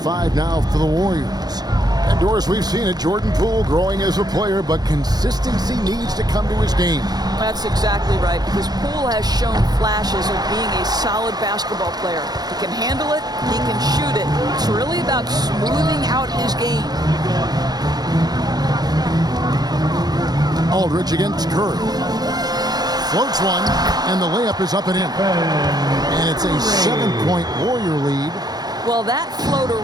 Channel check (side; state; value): left; late; 0.19 ms